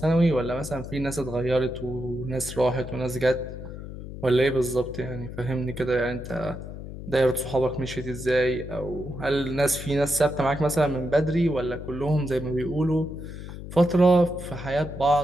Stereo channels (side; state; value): left; noise; hum, 10 dB below the sound